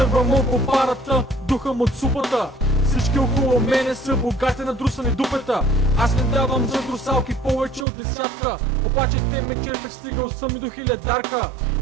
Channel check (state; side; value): drops out; left; at 7.9 s